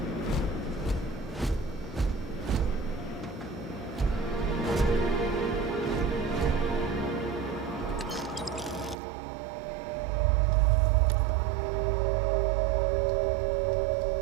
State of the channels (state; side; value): drops out; left; at 9.0 s